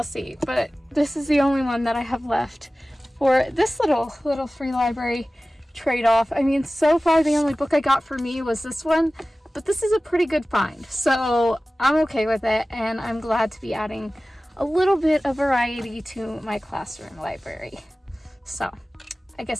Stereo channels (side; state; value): both; normal; correlation 0.96